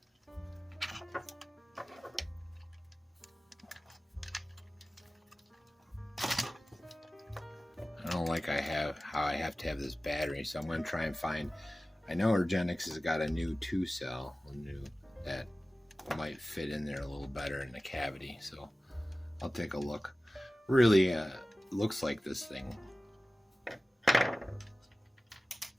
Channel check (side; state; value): both; normal; correlation 0.97